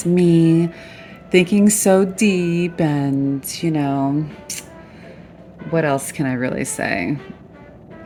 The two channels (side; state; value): both; identical; correlation 1.00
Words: me, thinking so deep and, what else can I really say?